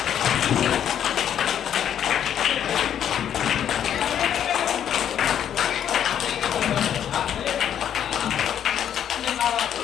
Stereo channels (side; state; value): right; quieter; 9.6 dB